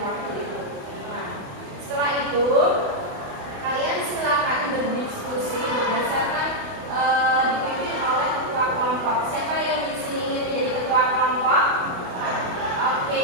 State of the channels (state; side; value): late; left; 28 ms